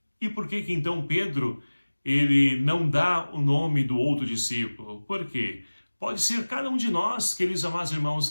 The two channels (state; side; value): inverted; both; correlation -1.00